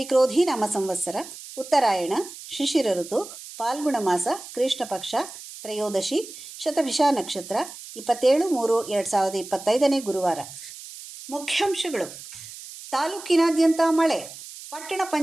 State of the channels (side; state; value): right; noise; hiss, 14 dB below the sound